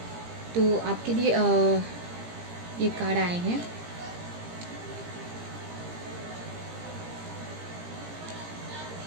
तो आपके लिए ये कार्ड आए हैं।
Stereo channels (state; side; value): late; left; 17 ms